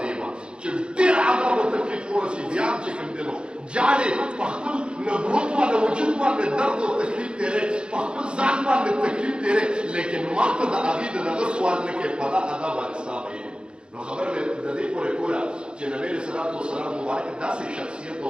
چې ډېر عذاب او تکلیف ورسي بیا چې کوم دی نو جاړې په خپل نبوت باندې وجود باندې درد او تکلیف تېرې په خپل ځان باندې تکلیف تېرې لیکن ما ته د هغې د دغه سوال نه کوې په دا عذاب باندې ستا ویل نو خبره مې د دې پورې کوله چې نبي علیه صلات وسلام مبارک داسې شخصیت او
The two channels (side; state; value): left; late; 0.053 ms